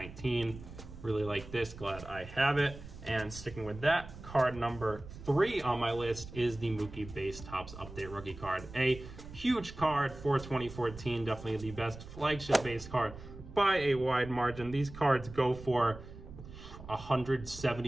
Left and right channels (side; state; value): right; noise; rumble, 14 dB below the sound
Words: Really like this, glad I have it. And sticking with that, card number 3 on my list is the Mookie Base Topps Update rookie card. A huge card for 2014, definitely the best flagship base card by a wide margin. These cards go for